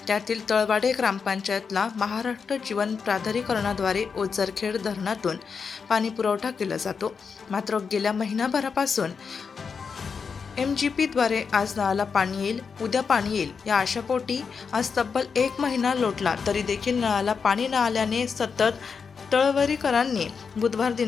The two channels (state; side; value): quieter; right; 5.7 dB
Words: त्यातील तळवाडे ग्रामपंचायतला महाराष्ट्र जीवन प्राधिकरणाद्वारे ओझरखेड धरणातून पाणी पुरवठा केला जातो। मात्र गेल्या महिनाभरापासून MGPद्वारे आज नळाला पाणी येईल, उद्या पाणी येईल या आशापोटी आज तब्बल एक महिना लोटला तरी देखील नळाला पाणी न आल्याने सतत तळवरीकरांनी बुधवार